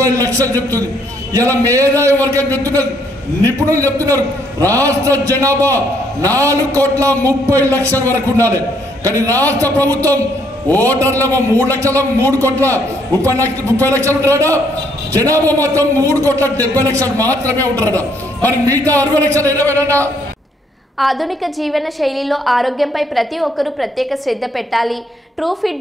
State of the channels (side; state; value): both; normal; correlation 0.69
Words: చెప్తుంది. ఇలా మేధావి వర్గం చెప్తున్నారు, నిపుణులు చెప్తున్నారు రాష్ట్ర జనాభా 4,30,00,000 వరకు ఉండాలి. కానీ రాష్ట్ర ప్రభుత్వం ఓటర్లేమో 3,30,00,000 ఉంటారట, జనాభా మొత్తం 3,70,00,000 మాత్రమే ఉంటారట. మరి మిగతా 60,00,000 ఏమైనా? ఆధునిక జీవన శైలిలో ఆరోగ్యంపై ప్రతి ఒక్కరూ ప్రత్యేక శ్రద్ధ పెట్టాలి. ట్రూ